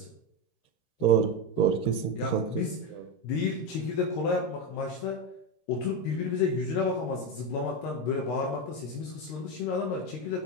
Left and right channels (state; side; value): late; right; 13 ms